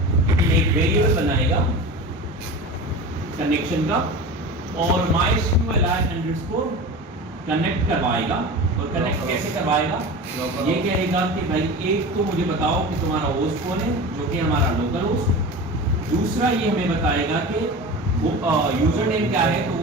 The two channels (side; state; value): both; normal; correlation 0.31